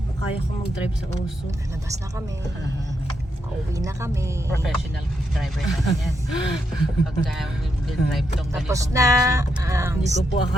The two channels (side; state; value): both; normal; correlation 0.81